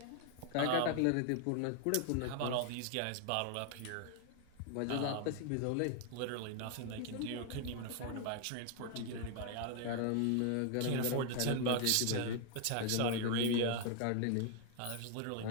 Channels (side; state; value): both; different; correlation 0.00